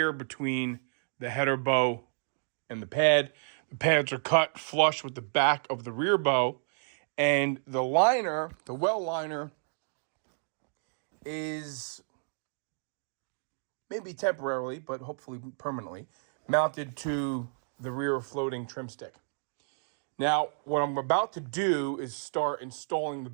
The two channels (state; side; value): silent; left; digital silence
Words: between the header bow and the pad. The pads are cut flush with the back of the rear bow. And the liner, the well liner, is maybe temporarily, but hopefully permanently, mounted to the rear floating trim stick. Now, what I'm about to do is start installing the